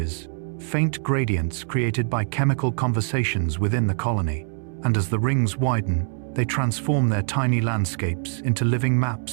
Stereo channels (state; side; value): silent; left; 63 dB below the other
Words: faint gradients created by chemical conversations within the colony. And as the rings widen, they transform their tiny landscapes into living